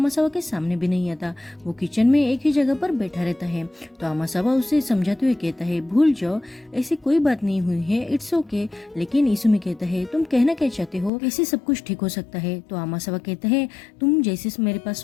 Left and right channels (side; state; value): right; drops out; at 11.1 s